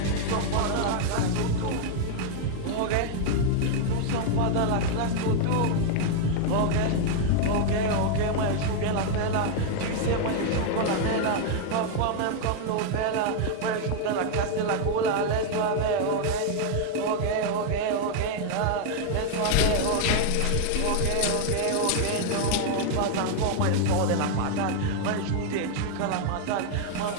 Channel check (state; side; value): different; both; correlation 0.00